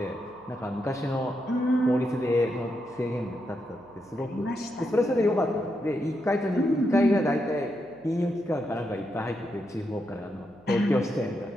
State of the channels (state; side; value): noise; right; hum, 28 dB below the sound